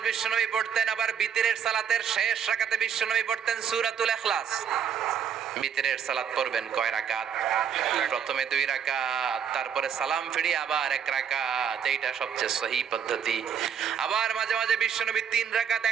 বিশ্বনবী পড়তেন। আবার বিতরের সালাতের শেষ রাকাতে বিশ্বনবী পড়তেন সূরাতুল ইখলাস। বিতরের সালাত পড়বেন কয় রাকাত? প্রথমে 2 রাকাত, তারপরে সালাম ফিরিয়ে আবার 1 রাকাত। এইটা সবচেয়ে সহি পদ্ধতি। আবার মাঝে মাঝে বিশ্বনবী 3 রাকাত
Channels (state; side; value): quieter; left; 7.9 dB